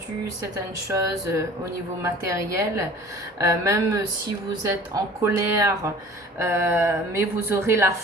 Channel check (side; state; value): both; normal; correlation 0.45